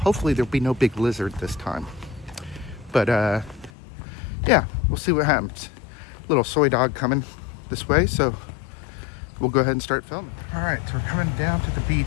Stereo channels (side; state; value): right; drops out; at 3.7 s